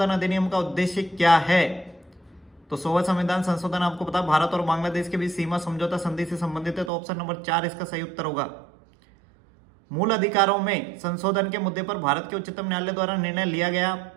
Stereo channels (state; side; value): drops out; left; at 6.9 s